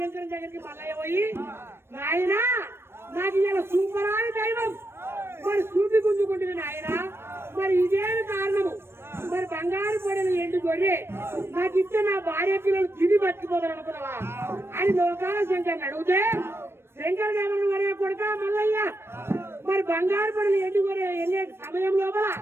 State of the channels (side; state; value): left; late; 0.12 ms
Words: దగ్గరికి మల్లయ్య పోయి, నాయన నాకు ఇలా సూపరాని దైవం మరి సూపి గుంజుకుంటుంది నాయన, మరి ఇదేమి కారణము, మరి బంగారు పడిన ఎండు గొర్రె నాకు ఇస్తే నా భార్య పిల్లలు తిని బతికిపోతారు అనుకున్నావా అని లోకాల శంకర్ని అడిగితే, శంకర్ దేవన్ వరే కొడుక మల్లయ్య, మరి బంగారు పడిన ఎండు గొర్రె వెళ్ళే సమయం లోపల